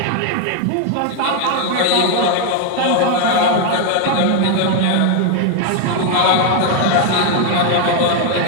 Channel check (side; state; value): both; different; correlation 0.01